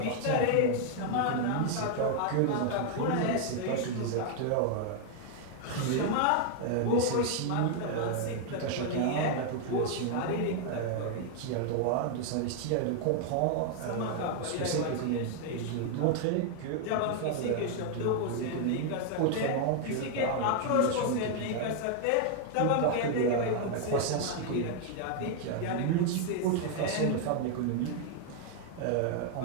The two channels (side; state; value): both; different; correlation 0.00